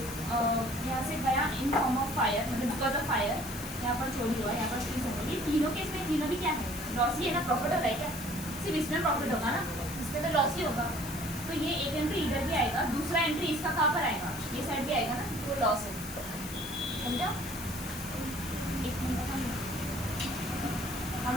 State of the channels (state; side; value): noise; left; hiss, 12 dB below the sound